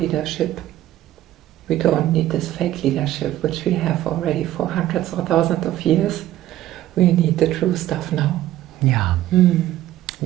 We don't need this fake leadership, which we have already for hundreds or thousands of years. We need the true stuff now. Yeah.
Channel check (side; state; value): left; quieter; 13.9 dB